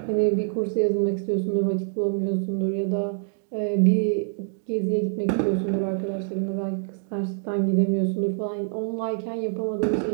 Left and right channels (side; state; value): left; silent; digital silence